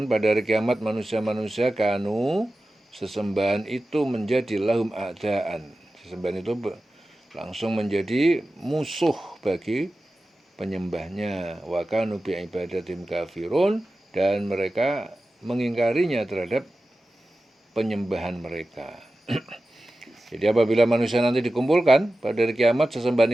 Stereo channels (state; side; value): normal; both; correlation 0.94